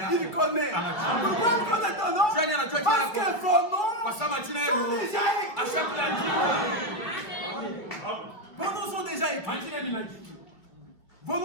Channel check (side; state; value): right; late; 2.0 ms